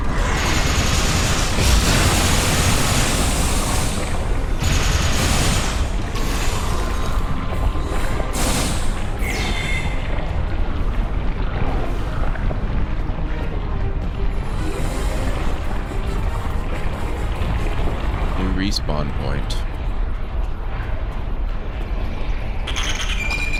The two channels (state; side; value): identical; both; correlation 1.00